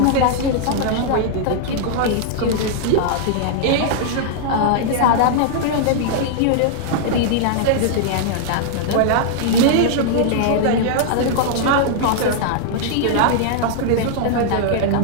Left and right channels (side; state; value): both; different; correlation -0.01